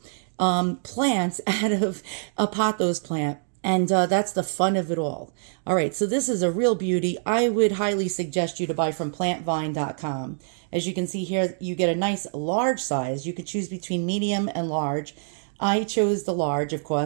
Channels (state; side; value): silent; left; digital silence